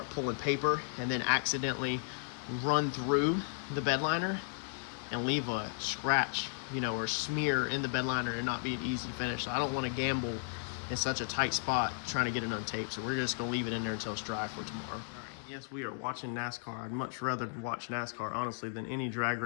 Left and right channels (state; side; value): silent; right; digital silence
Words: pulling paper and then accidentally run through the bed liner and leave a scratch, you know, or smear in the bed liner and not be an easy finish. So I don't want to gamble in such a tight spot trying to get it untaped. So we're just going to leave it in there until it's dry for tomorrow. All right, yes, we are watching NASCAR. I'd much rather watch NASCAR, honestly, than any drag